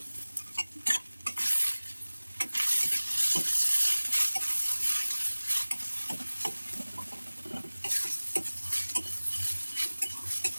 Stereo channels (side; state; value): both; inverted; correlation -1.00